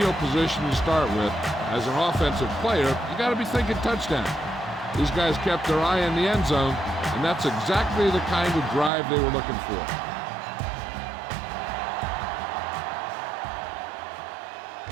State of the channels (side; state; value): left; drops out; at 8.9 s